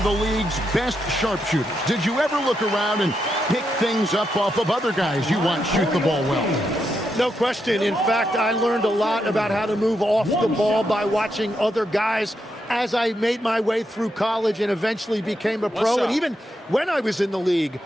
the league's best sharpshooters. Did you ever look around and pick things up off of other guys you watch shoot the ball well? No question. In fact, I learned a lot about how to move off the ball by watching other guys as I made my way through college and eventually became a pro. And even when I was in the league,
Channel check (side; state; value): both; normal; correlation 0.83